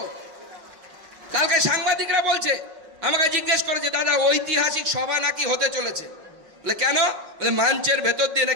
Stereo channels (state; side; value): late; left; 6.2 ms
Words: কালকে সাংবাদিকরা বলছে, আমাকে জিজ্ঞেস করেছে, দাদা ঐতিহাসিক সভা নাকি হতে চলেছে। বলে কেন? বলে মঞ্চের ভেতর দিয়ে